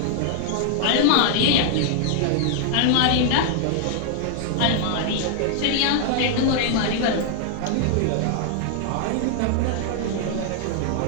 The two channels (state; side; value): different; both; correlation 0.00